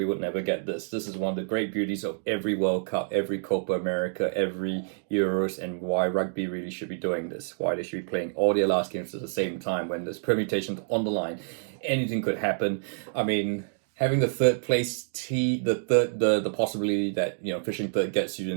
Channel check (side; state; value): left; silent; digital silence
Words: would never get this. This is one of the great beauties of every World Cup, every Copa America, every Euros, and why rugby really should be doing this. Why they should be playing all their last games at the same time when there's permutations on the line. Anything could happen. I mean, having the third place the possibility that finishing third gets you